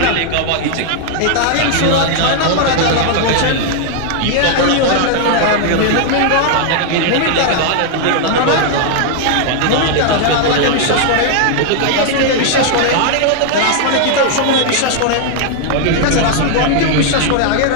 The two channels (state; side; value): different; both; correlation 0.00